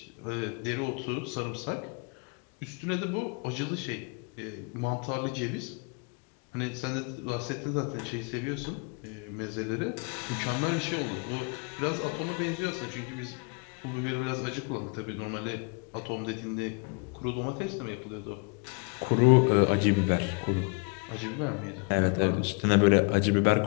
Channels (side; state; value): right; quieter; 34.6 dB